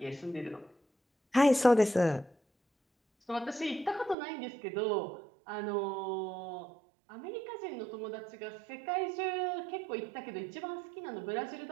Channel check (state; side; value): drops out; left; at 4.2 s